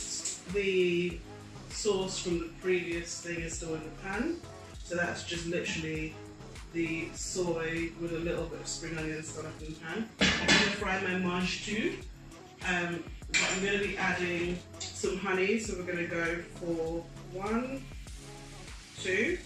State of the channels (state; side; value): identical; both; correlation 1.00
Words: the sauce from the previous thing is still in the pan, so that's just literally the soy with a little bit of spring onions still up in the pan. I'm going to fry my Mangetout. But I'm going to be adding some honey, so we're going to go for 1, 2